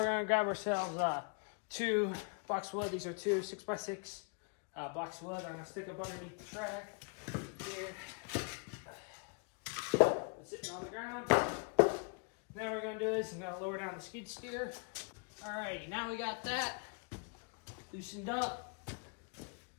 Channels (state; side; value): quieter; right; 36.5 dB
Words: going to grab ourselves 2 blocks of wood. These are 2 6x6 blocks of wood. I'm going to stick up underneath the track here. It's sitting on the ground. Now what we're going to do is I'm going to lower down the skid steer. Alrighty, now we got that loosened up.